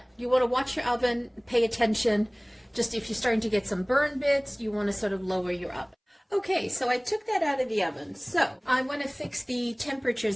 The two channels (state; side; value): identical; both; correlation 1.00